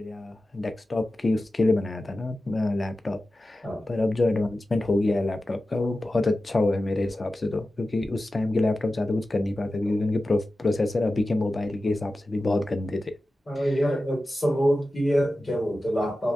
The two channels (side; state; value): both; normal; correlation 0.94